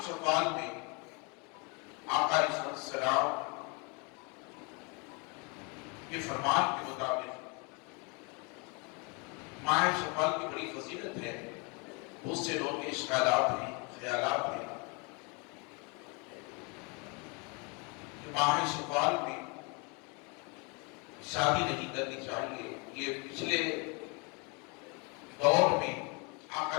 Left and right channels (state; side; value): quieter; right; 31.7 dB